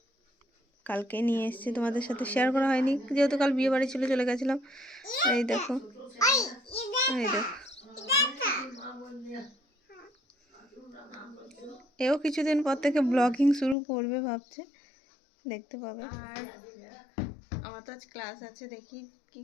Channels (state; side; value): drops out; right; at 13.8 s